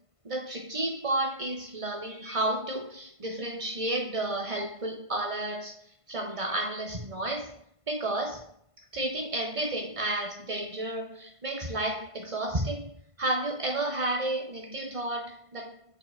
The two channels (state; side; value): late; left; 1.5 ms